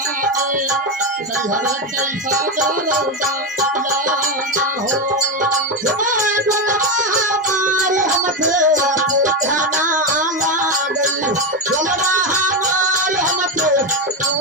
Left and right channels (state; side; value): normal; both; correlation 0.12